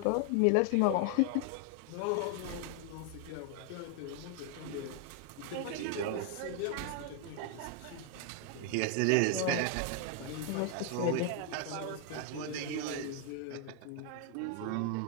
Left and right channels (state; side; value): different; both; correlation 0.00